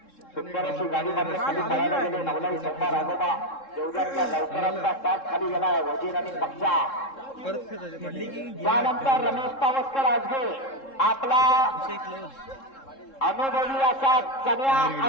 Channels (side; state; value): right; late; 3.7 ms